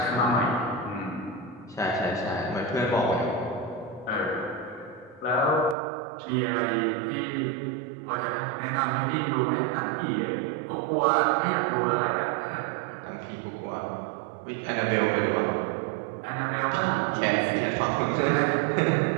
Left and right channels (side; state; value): left; drops out; at 5.8 s